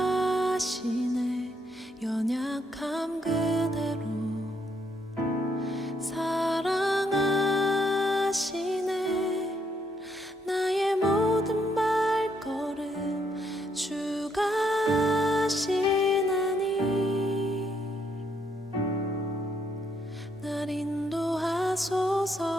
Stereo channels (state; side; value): normal; both; correlation 0.74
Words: 연약함 그대로 사랑하시네. 나의 모든 발걸음 주가 하시나니 날 인도하소서.